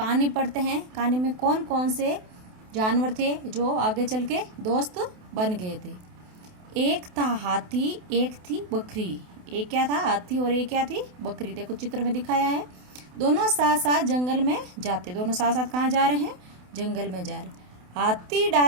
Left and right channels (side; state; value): left; late; 28 ms